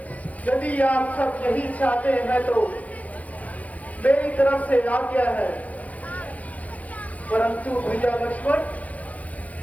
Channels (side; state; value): right; late; 0.068 ms